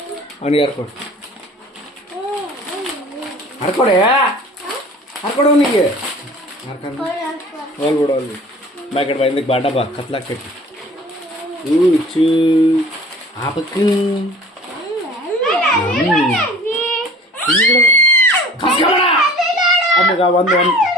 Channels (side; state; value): both; normal; correlation 0.45